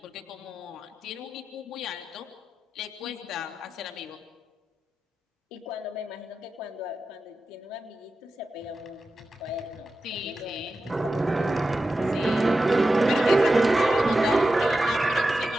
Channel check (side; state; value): both; normal; correlation 0.92